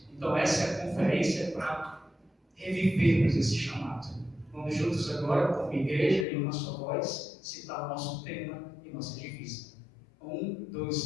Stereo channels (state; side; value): drops out; right; at 6.2 s